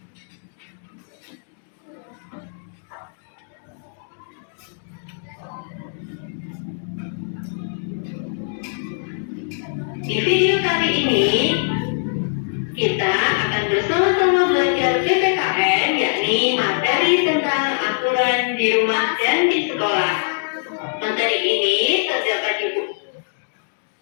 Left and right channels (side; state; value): right; silent; digital silence